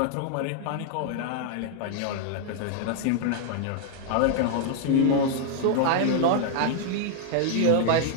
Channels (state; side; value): different; both; correlation -0.01